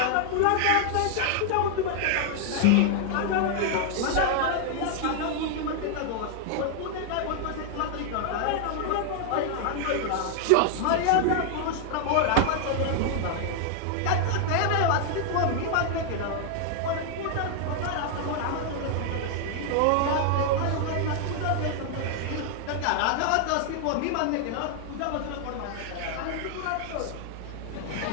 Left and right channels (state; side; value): different; both; correlation 0.00